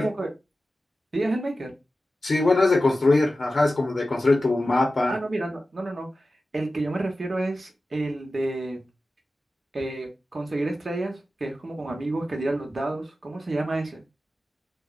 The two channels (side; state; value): both; normal; correlation 0.94